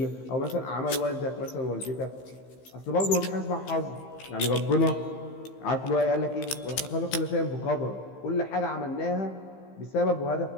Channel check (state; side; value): late; right; 15 ms